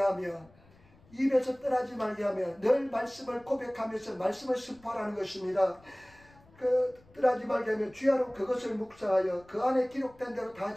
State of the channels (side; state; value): left; noise; rumble, 28 dB below the sound